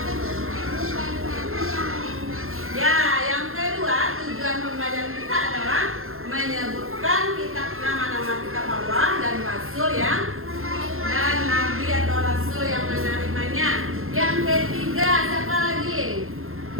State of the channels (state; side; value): late; left; 0.61 ms